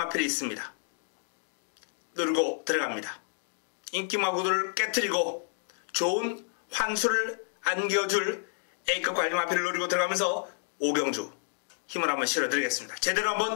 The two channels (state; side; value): silent; right; digital silence